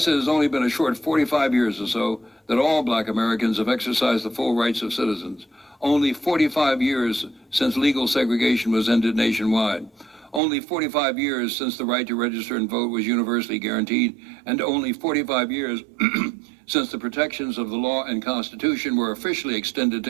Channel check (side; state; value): left; drops out; at 10.4 s